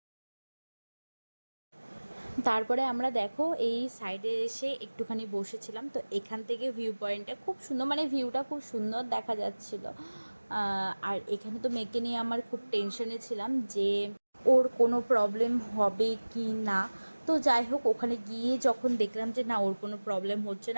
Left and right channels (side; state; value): both; inverted; correlation -1.00